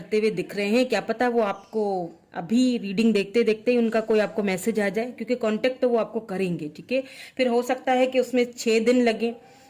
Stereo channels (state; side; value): identical; both; correlation 1.00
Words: हुए दिख रहे हैं। क्या पता वो आपको अभी रीडिंग देखते देखते ही उनका कोई आपको मैसेज आ जाए, क्योंकि कांटेक्ट तो वो आपको करेंगे। ठीक है, फिर हो सकता है कि उसमें 6 दिन लगे,